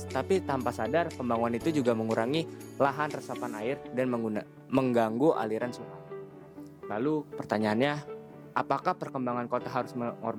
tapi tanpa sadar pembangunan itu juga mengurangi lahan resapan air dan mengganggu aliran sungai. Lalu pertanyaannya, apakah perkembangan kota harus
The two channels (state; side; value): identical; both; correlation 1.00